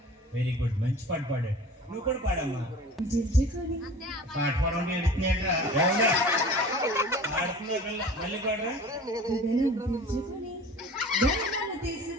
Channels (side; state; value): both; normal; correlation 0.41